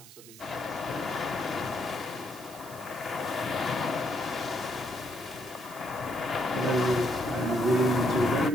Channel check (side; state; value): right; noise; hiss, 18 dB below the sound